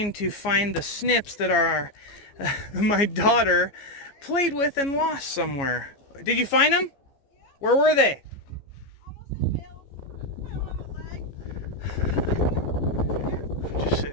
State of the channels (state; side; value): late; right; 14 ms